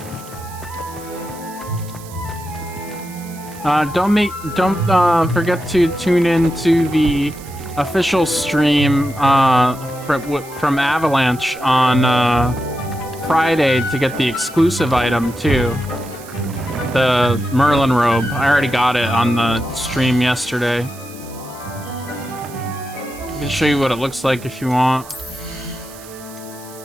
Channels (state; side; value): noise; right; hiss, 19 dB below the sound